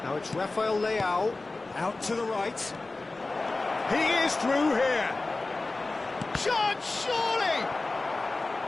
Now it's Rafael Leao. Out to the right. He is through here. Chance, surely!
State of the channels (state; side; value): quieter; right; 3.3 dB